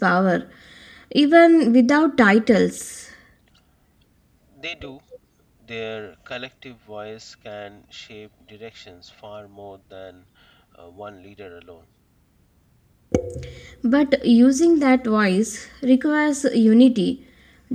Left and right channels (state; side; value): identical; both; correlation 1.00